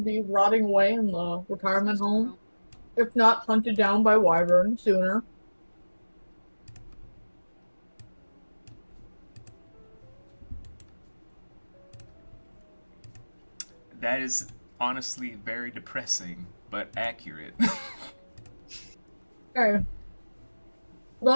be rotting away in the retirement home, if not hunted down by Wyvern sooner. That is honestly very depressing, but accurate. Okay.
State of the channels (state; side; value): inverted; both; correlation -1.00